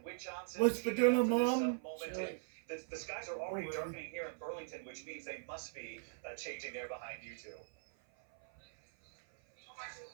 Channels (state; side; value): silent; left; 51 dB below the other